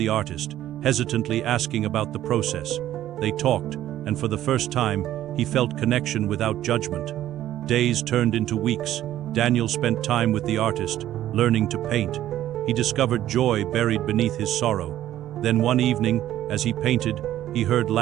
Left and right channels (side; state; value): left; quieter; 12.8 dB